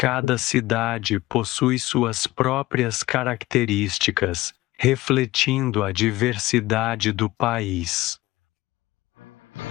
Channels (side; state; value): right; quieter; 18.0 dB